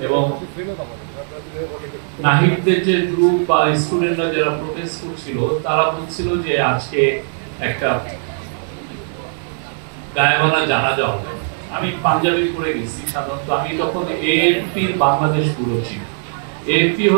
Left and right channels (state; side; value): silent; left; 62 dB below the other